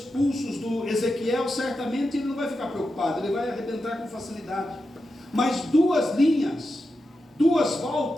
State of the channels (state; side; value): normal; both; correlation 0.89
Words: pulsos do Ezequiel, certamente ele não vai ficar preocupado, ele vai arrebentar com facilidade. Mas 2 linhas, 2